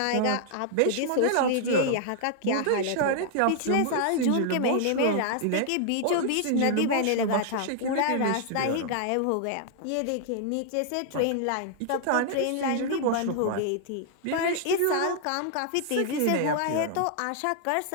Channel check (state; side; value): different; both; correlation -0.01